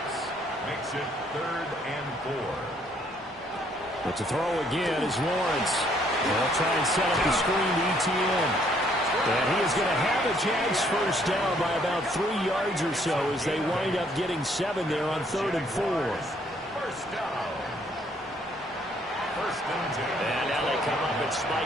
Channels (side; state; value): both; normal; correlation 0.66